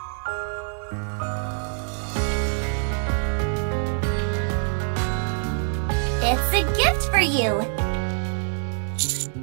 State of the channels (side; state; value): left; silent; 62 dB below the other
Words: It's a gift for you.